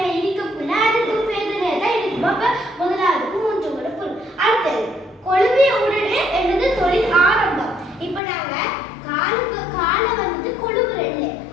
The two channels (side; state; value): right; drops out; at 8.2 s